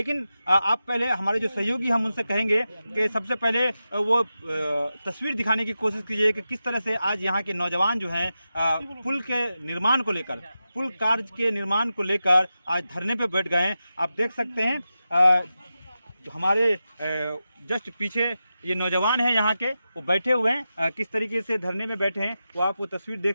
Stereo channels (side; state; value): both; inverted; correlation -0.91